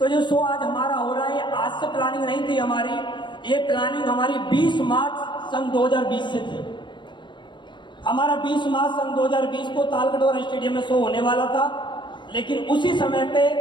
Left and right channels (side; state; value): right; late; 0.23 ms